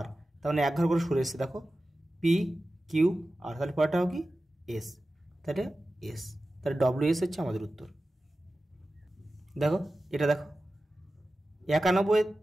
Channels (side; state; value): both; normal; correlation 0.94